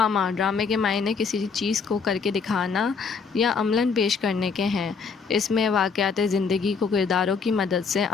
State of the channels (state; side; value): quieter; right; 5.4 dB